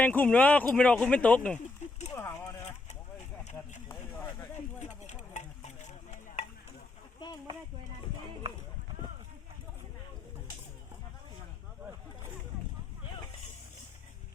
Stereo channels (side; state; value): right; quieter; 3.3 dB